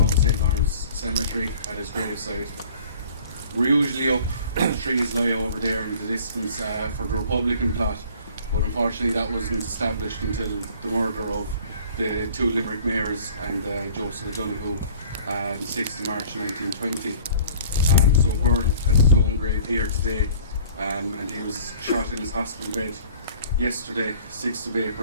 St. Lawrence Cemetery at his graveside. We're usually up, the trees lie over there in the distance for the Republican plot, but unfortunately that wasn't established until the murder of the two Limerick mayors and Joseph O'Donoghue on the 6th of March 1920. So Byrne has his own grave here today, and he was shot in his hospital bed yesterday, 6th of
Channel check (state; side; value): inverted; both; correlation -0.49